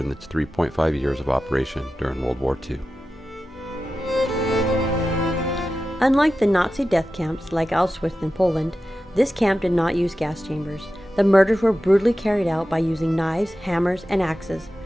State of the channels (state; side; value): normal; both; correlation 0.93